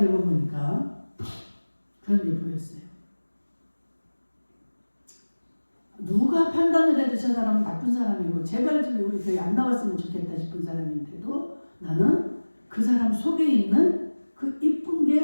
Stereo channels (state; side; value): inverted; both; correlation -1.00